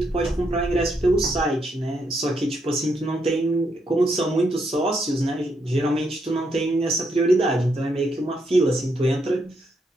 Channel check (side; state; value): both; normal; correlation 0.78